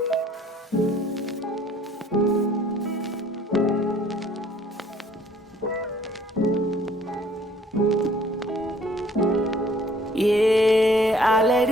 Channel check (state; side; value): normal; both; correlation 0.58